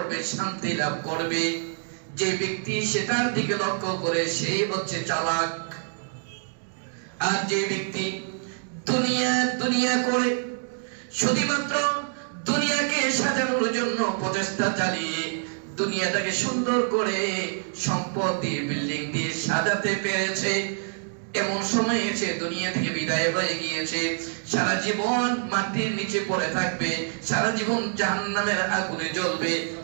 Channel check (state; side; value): silent; left; 56 dB below the other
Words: শান্তি লাভ করবে, যে ব্যক্তি সেটার দিকে লক্ষ্য করে সেই হচ্ছে চালাক। আর যে ব্যক্তি দুনিয়া করে শুধুমাত্র দুনিয়াকে সাজানোর জন্য প্রচেষ্টা চালিয়ে দুনিয়াটাকে সুন্দর করে সম্পদ দিয়ে বিল্ডিং দিয়ে সাজাতে পেরেছে, এমন সময় এসে দুনিয়া থেকে বিদায় হয়ে গিয়েছে, সারা জীবন মাটির নিচে পড়ে থাকবে, সারা জীবন জাহান্নামের আগুনে জ্বলবে,